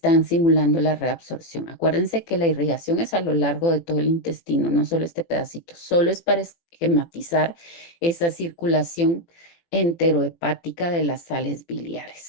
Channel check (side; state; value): right; late; 24 ms